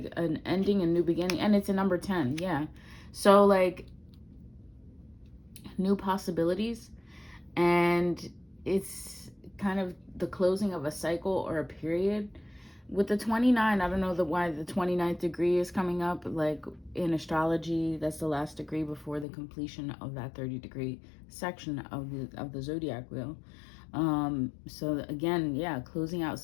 an ending and new beginning. And it's a number 10. Yeah, so like new possibilities, and it's kind of the closing of a cycle or a period. With the 29, I don't know why the 29th degree is coming up. Like in astrology, that's the last degree before the completion of that 30-degree section of the zodiac wheel. So again, yeah, closing out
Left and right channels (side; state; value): right; drops out; at 19.2 s